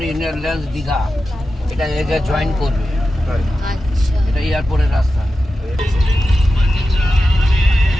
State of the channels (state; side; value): normal; both; correlation 0.92